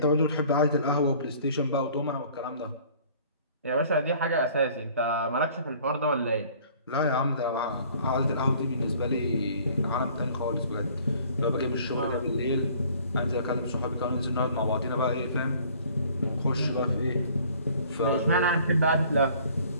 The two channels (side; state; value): both; inverted; correlation -0.54